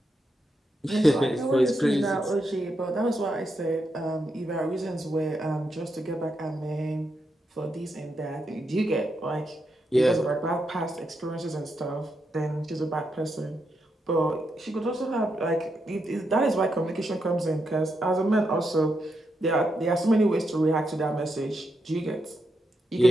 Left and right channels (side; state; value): both; normal; correlation 0.83